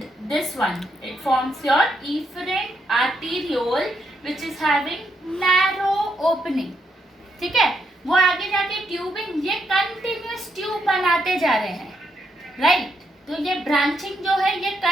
this one, it forms your efferent arteriole, which is having narrow opening. ठीक है, वो आगे जाके tubing, ये continuous tube बनाते जा रहे हैं, राइट? तो ये ब्रांचिंग जो है, ये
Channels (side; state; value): both; normal; correlation 0.79